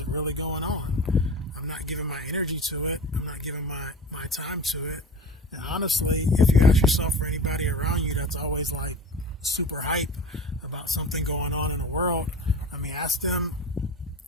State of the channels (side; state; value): both; normal; correlation 0.33